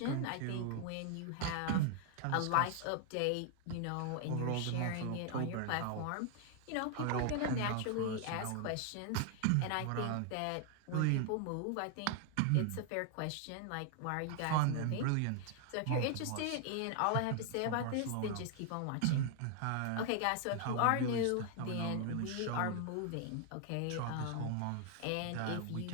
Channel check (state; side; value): different; both; correlation 0.00